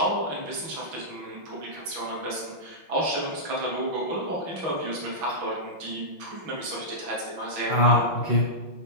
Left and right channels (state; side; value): late; left; 6.1 ms